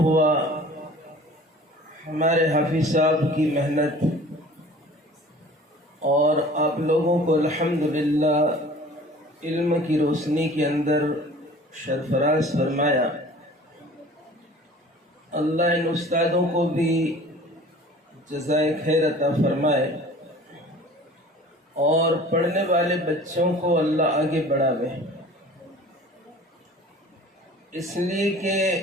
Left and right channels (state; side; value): normal; both; correlation 0.46